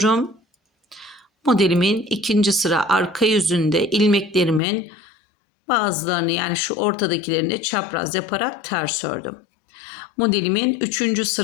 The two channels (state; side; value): drops out; right; at 4.6 s